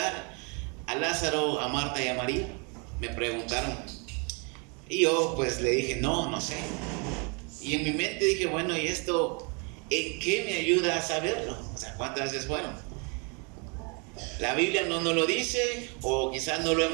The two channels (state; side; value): quieter; left; 33.8 dB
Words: a Lázaro, a Marta y a María? Me preguntaron. Y yo pues le dije, no sé. Y en mi mente dije, bueno, ¿y esto en qué me ayuda a saberlo? O sea, ¿cuántas veces fueron? La Biblia no nos lo dice, o quizás no lo